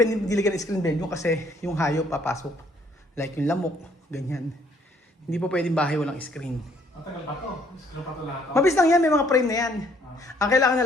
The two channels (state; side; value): normal; both; correlation 0.64